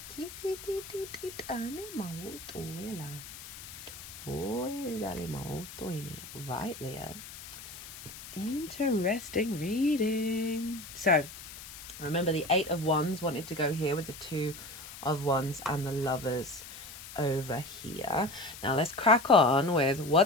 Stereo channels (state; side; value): noise; left; hiss, 13 dB below the sound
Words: Right, Leo. Interesting reading. So, remember the 8 of Wands wanted to go here with the 2 of Wands and the Lovers over here. Now let's crack on with